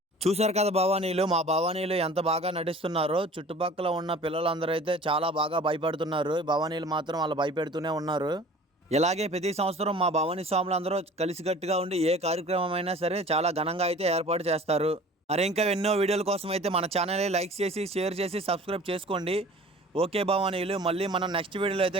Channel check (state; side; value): normal; both; correlation 0.45